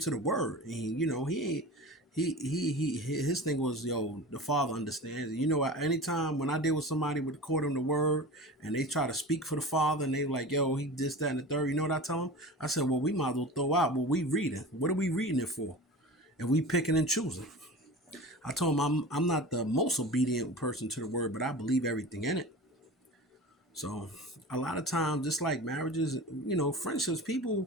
the word, and he ain't. His thing was, the Father understands. Anytime when I deal with somebody with according to the word and they try to speak for the Father and they like, he this, that, and the third, you know what I tell them? I said, well, we might as well throw out what we reading. What are we reading it for? And we picking and choosing. I told him I'm not the most obedient person to the word, but I believe everything in it. So a lot of times, just like marriages, friendships,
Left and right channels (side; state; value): both; normal; correlation 0.34